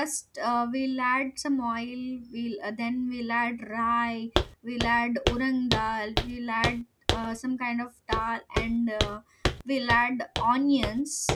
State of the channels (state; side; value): identical; both; correlation 1.00